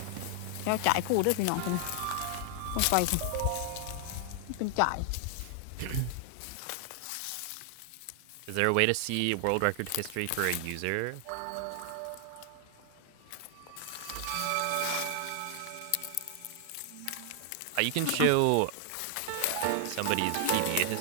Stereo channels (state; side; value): different; both; correlation 0.00